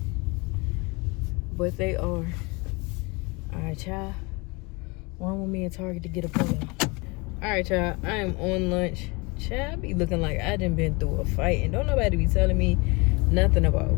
but they are. All right, y'all. Run with me in Target to get a polo. All right, y'all. I am on lunch. Child, I be looking like I done been through a fight, and don't nobody be telling me nothing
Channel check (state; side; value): quieter; right; 27.2 dB